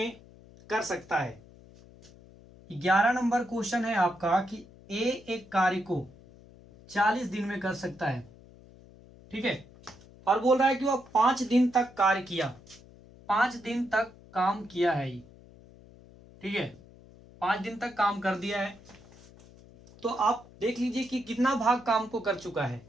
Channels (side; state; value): left; noise; hum, 23 dB below the sound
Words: कर सकता है। 11 नंबर क्वेश्चन है आपका कि ए एक कार्य को 40 दिन में कर सकता है। ठीक है, और बोल रहा है कि वह 5 दिन तक कार्य किया, 5 दिन तक काम किया है ये। ठीक है, 5 दिन तक काम कर दिया है, तो आप देख लीजिए कि कितना भाग काम को कर चुका है।